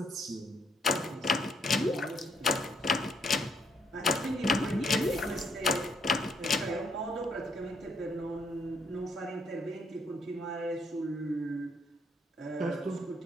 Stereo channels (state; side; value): normal; both; correlation 0.72